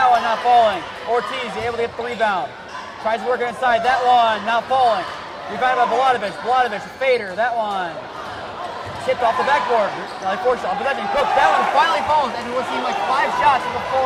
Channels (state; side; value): identical; both; correlation 1.00